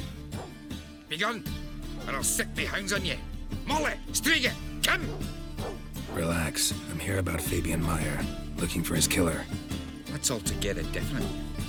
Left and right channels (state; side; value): identical; both; correlation 1.00